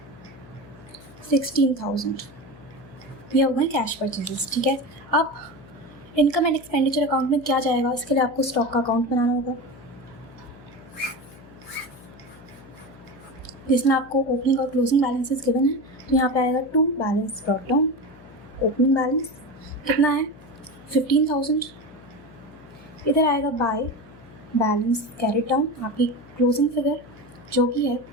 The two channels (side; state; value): left; noise; hum, 21 dB below the sound